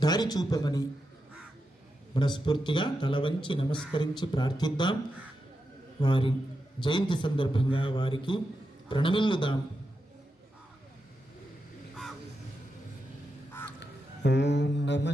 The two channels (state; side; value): normal; both; correlation 0.87